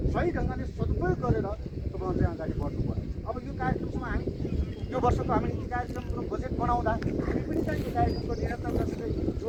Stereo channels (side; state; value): both; identical; correlation 1.00